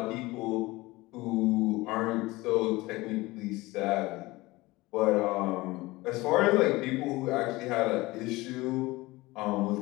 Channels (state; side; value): quieter; right; 20.8 dB